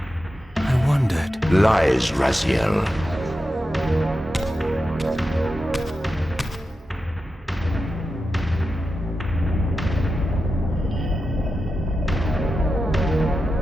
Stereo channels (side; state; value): both; normal; correlation 0.90